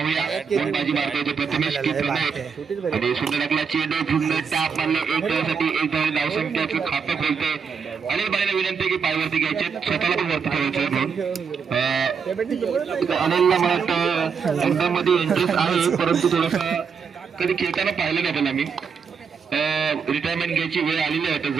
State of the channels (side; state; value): left; quieter; 6.2 dB